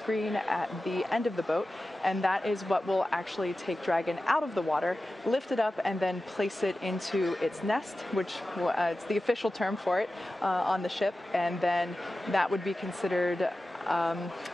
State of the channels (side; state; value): both; normal; correlation 0.94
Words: at the end of the boat, and that is what will actually take Dragon out of the water, lift it up, and then place it into its nest, which it's the official term for it on the ship, and then that would be considered